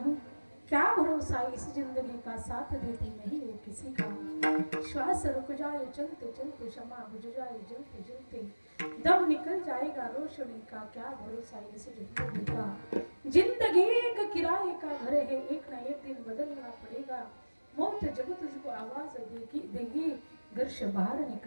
क्या भरोसा इस जिंदगी का साथ देती नहीं वो किसी का. श्वास रुक जाए चलते चलते, क्षमा बुझ जाए जलते जलते, दम निकल जाएगा रोशनी का. क्या भरोसा इस जिंदगी का. जिंदगी एक किराए का घर है, एक ना एक दिन बदलना पड़ेगा. मौत जब तुझको आवाज देगी, घर से बाहर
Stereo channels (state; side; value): inverted; both; correlation -1.00